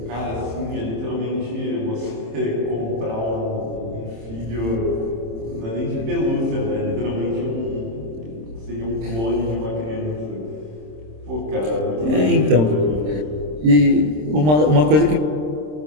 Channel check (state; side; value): late; left; 26 ms